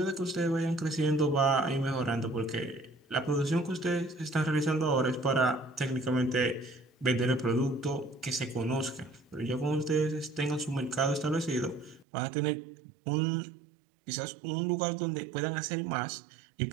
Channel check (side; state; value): left; drops out; at 12.1 s